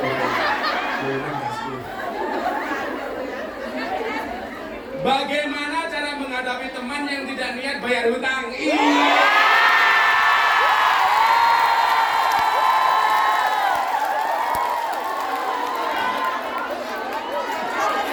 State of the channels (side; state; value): both; identical; correlation 1.00